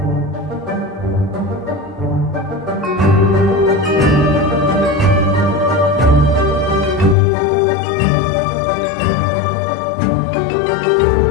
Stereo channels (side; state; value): right; drops out; at 7.2 s